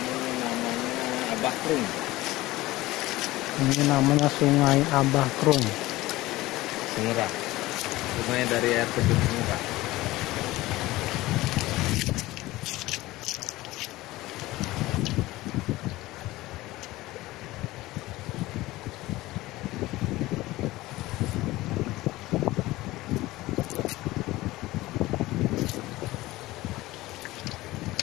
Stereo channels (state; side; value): quieter; right; 18.3 dB